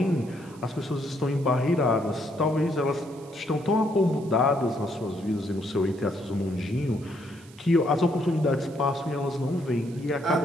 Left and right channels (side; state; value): right; noise; hiss, 25 dB below the sound